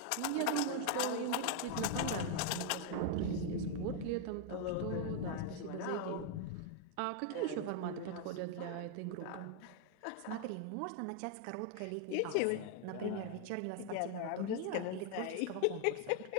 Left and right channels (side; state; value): both; different; correlation 0.00